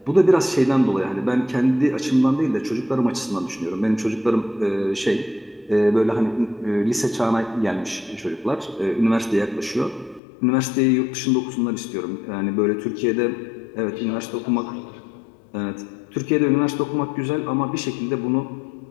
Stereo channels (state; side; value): drops out; right; at 10.2 s